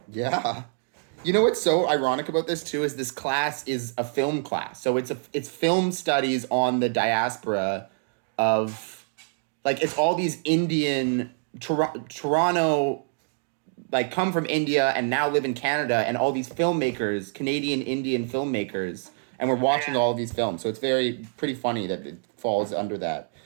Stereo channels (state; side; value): silent; left; 61 dB below the other